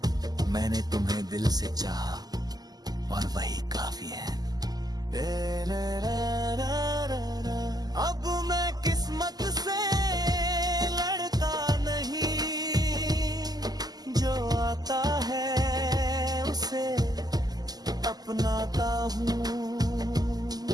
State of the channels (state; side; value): late; left; 0.19 ms